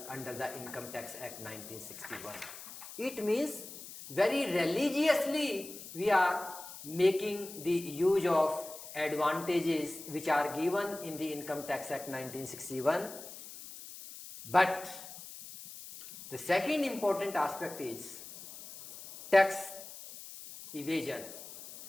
under the Income Tax Act 1961. It means very religiously we are making the use of advantages which are given in the Income Tax Act 1961. But the second important aspect is tax evasion.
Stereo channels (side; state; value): left; noise; hiss, 13 dB below the sound